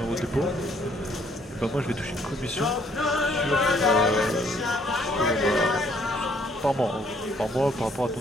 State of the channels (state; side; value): normal; both; correlation 0.65